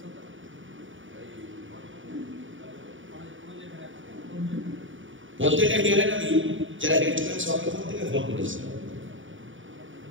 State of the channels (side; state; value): left; late; 0.57 ms